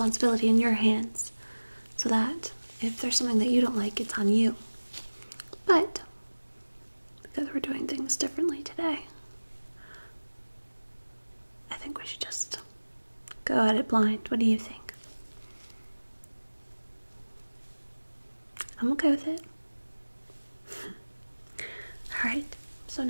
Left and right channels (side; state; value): both; inverted; correlation -1.00